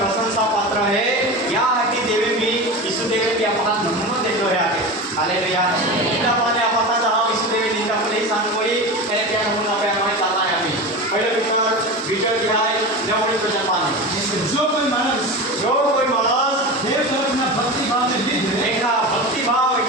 प्रशंसा पात्र है या हटी देवे भी यीशु देवे भी आपण नमूना देतो है आगे हालेलुया निंदा माने आपण जहां यीशु देवे निंदा को सांग कोई त्याने त्या नमूना पे हमें चलना है अभी पहले विचार दिहाय नवरे प्रजा पाने जो कोई मानस देव तरफना भक्ति भाव ने લીધે देखा भक्ति भाव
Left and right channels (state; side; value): normal; both; correlation 0.26